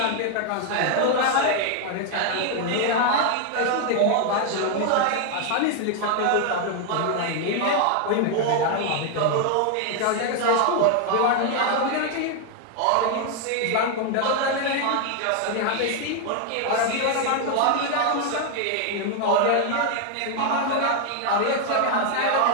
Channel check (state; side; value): different; both; correlation 0.00